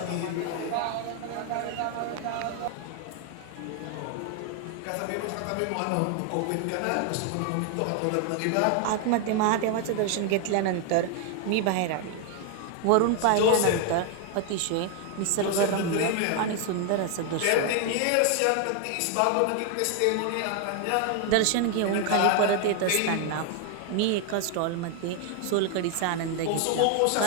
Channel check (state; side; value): different; both; correlation 0.00